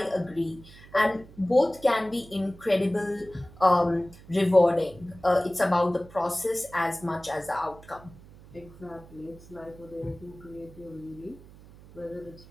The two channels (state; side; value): noise; right; hum, 21 dB below the sound